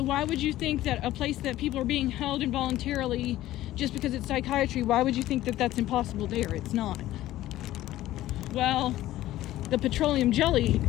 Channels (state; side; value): quieter; right; 14.9 dB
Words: why would you think that a place that people are being held involuntarily, just because it's psychiatry, why would you think that that's impossible there? It's not. Well, the petroleum jelly